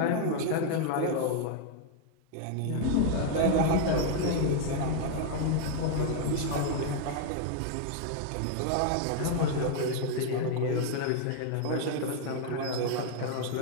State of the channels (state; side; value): different; both; correlation 0.00